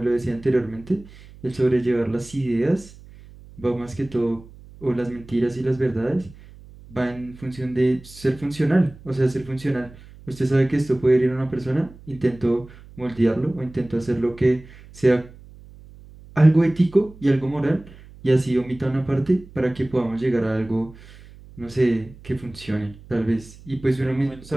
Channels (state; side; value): noise; right; hum, 21 dB below the sound